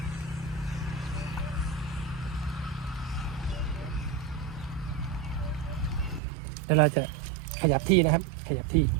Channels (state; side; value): drops out; left; at 6.2 s